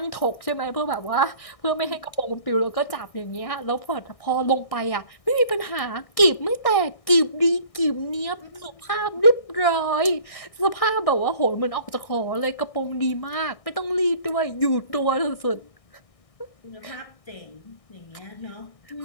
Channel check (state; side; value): late; right; 1.6 ms